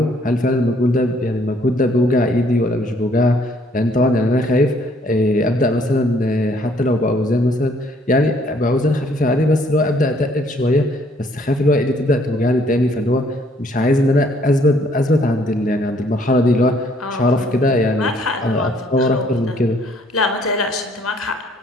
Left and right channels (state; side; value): normal; both; correlation 0.64